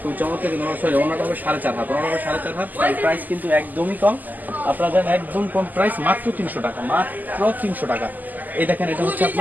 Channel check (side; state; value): left; late; 0.083 ms